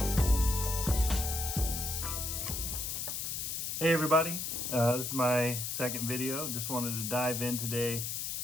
everybody, this is my second video. Just wanted to dive in today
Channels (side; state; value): left; noise; hiss, 3 dB below the sound